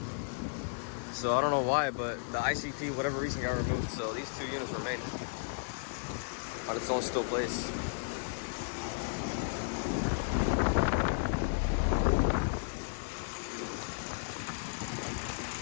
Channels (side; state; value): right; silent; digital silence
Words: So I don't know why, but the ICP, whatever reason, got removed. So these two units remain on its own still place.